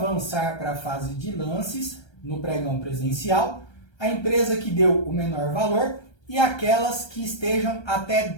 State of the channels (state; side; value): late; right; 1.3 ms